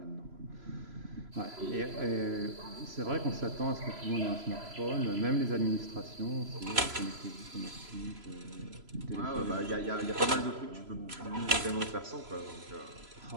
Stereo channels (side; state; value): left; late; 3.0 ms